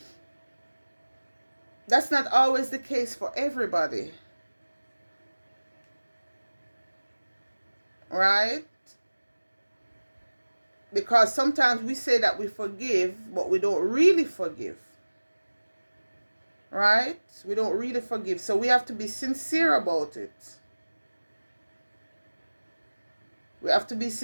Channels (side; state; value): both; inverted; correlation -1.00